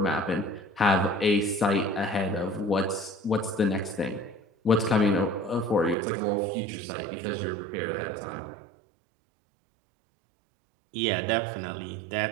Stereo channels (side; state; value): left; drops out; at 6.0 s